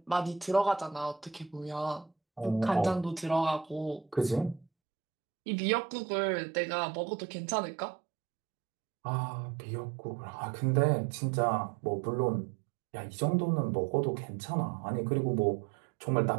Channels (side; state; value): left; drops out; at 4.7 s